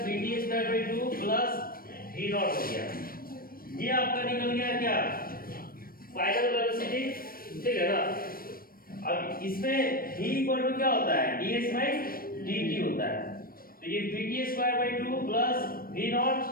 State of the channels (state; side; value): late; right; 0.43 ms